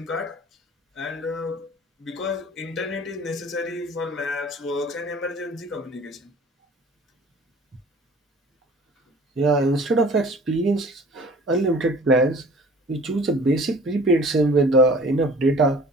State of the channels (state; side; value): normal; both; correlation 0.48